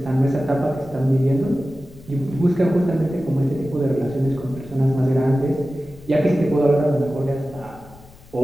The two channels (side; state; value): left; noise; rumble, 22 dB below the sound